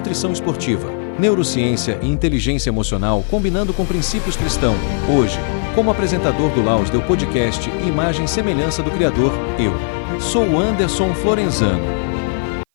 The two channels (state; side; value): silent; right; 55 dB below the other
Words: esportiva, neurociência e inteligência emocional combinando com princípios cristãos. Hoje, como apresentador do Lausdeu Podcast e imagem e semelhança do Criador, eu sou o Anderson Florenzano.